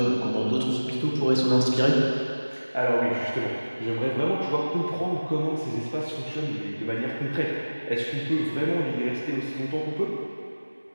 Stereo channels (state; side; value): inverted; both; correlation -1.00